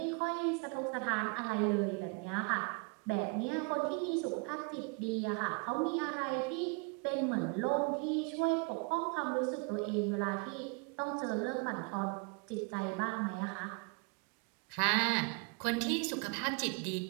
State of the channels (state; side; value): quieter; left; 33.1 dB